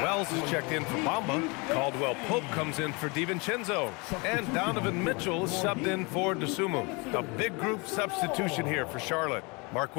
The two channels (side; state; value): right; quieter; 28.7 dB